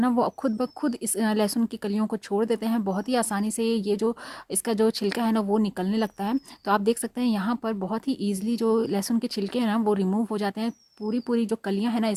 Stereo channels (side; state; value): both; identical; correlation 1.00